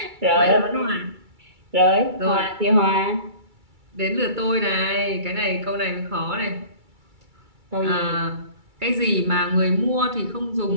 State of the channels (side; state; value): left; late; 2.3 ms